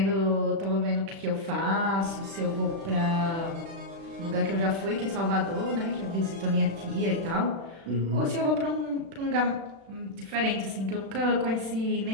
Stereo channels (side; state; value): left; late; 36 ms